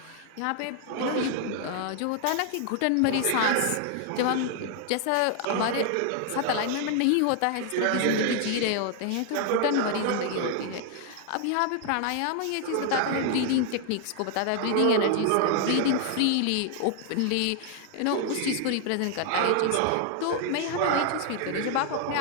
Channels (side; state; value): both; different; correlation 0.00